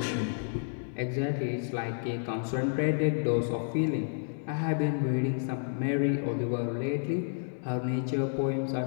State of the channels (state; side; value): silent; right; digital silence